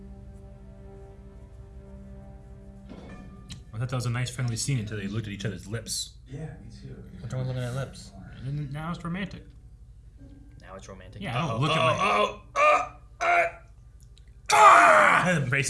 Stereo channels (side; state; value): both; identical; correlation 1.00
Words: I thought that was a nice friendly scene until they looked at each other's lips. Yeah, me too. What's wrong with looking at lips? And then now it's romantic. Now it's romantic. Yeah, I don't look at my... The